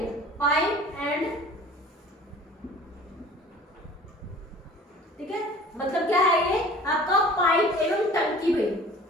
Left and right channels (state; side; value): normal; both; correlation 0.46